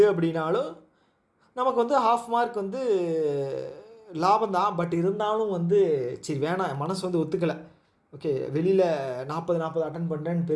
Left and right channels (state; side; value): identical; both; correlation 1.00